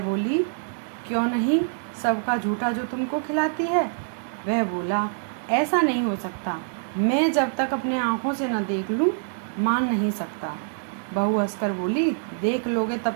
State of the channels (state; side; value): silent; left; digital silence